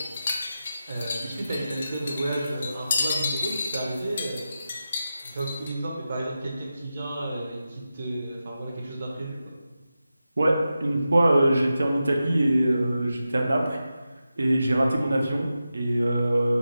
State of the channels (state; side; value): inverted; both; correlation -0.91